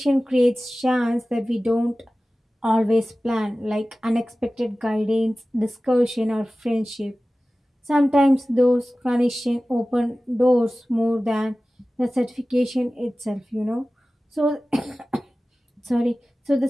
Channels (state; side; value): normal; both; correlation 0.97